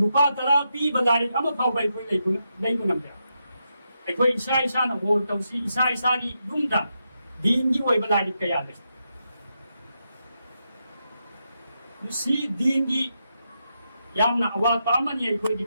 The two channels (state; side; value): inverted; both; correlation -0.84